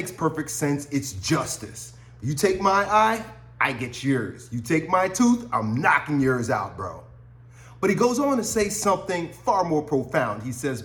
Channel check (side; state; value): both; identical; correlation 1.00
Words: perfect sense. It's justice. You take my eye, I get yours. You take my tooth, I'm knocking yours out, bro. But he goes on to say something far more profound. He says,